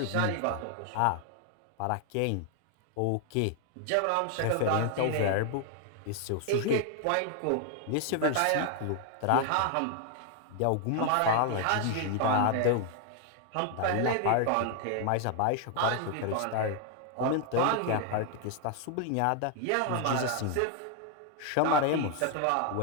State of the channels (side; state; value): both; different; correlation 0.00